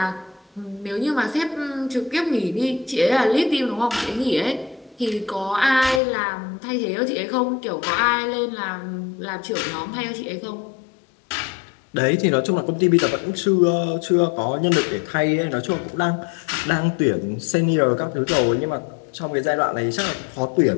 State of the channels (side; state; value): right; drops out; at 6.0 s